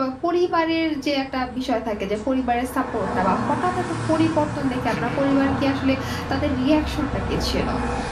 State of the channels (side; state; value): both; identical; correlation 1.00